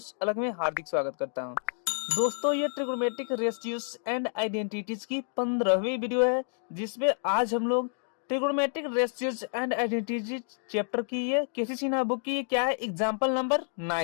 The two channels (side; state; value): right; silent; digital silence